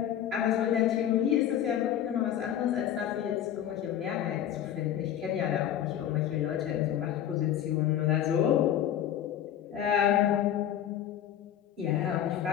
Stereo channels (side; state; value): right; quieter; 10.6 dB